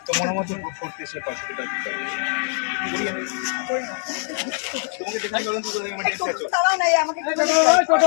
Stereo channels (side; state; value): right; silent; 64 dB below the other